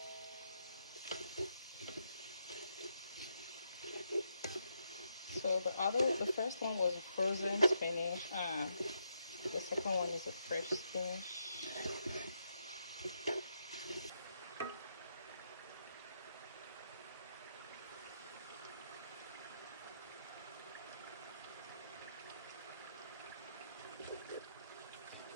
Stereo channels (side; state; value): both; inverted; correlation -0.80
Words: So the first one was a frozen spinach, and the second one is a fresh spinach.